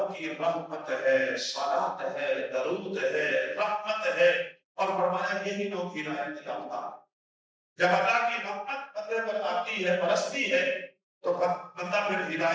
کی رحمت ہے، صلاۃ ہے، درود ہے، رحمت ہے، اور فرمایا یہی لوگ ہدایت یافتہ۔ جب اللہ کی رحمت بندے پر آتی ہے، برستی ہے، تو بندہ پھر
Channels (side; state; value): both; identical; correlation 1.00